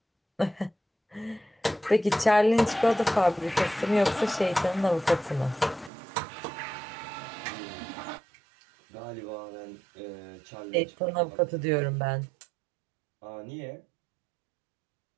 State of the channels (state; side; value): drops out; left; at 5.9 s